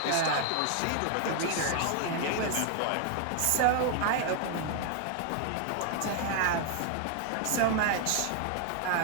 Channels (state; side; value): different; both; correlation 0.00